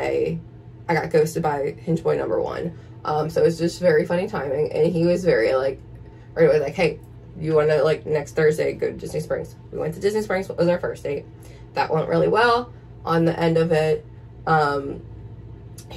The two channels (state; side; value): identical; both; correlation 1.00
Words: I got ghosted by Hinge Boy number 1. So it was just very funny timing, and he was very like, right away, like, hey, you want to, like, next Thursday go to Disney Springs? We went to Disney Springs. What was our first date? That went really well. On the end of it,